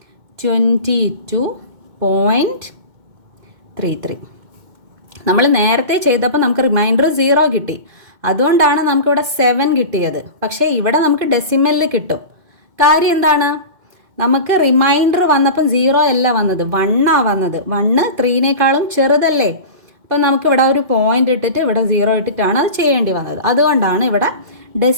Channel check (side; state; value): left; late; 2.1 ms